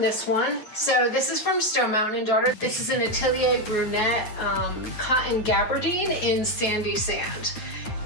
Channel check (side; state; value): right; late; 9.2 ms